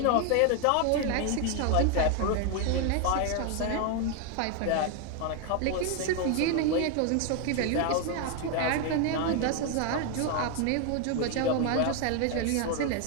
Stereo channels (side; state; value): both; different; correlation 0.01